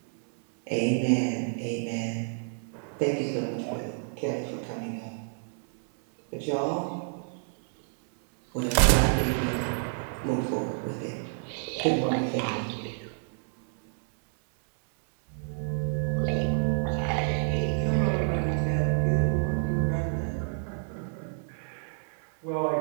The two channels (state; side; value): silent; left; 59 dB below the other